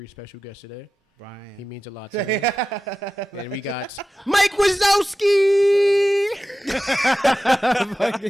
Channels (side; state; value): both; normal; correlation 0.93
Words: special guest today. Bryan. He means a lot to me. And we got Mike Wazowski! Fucking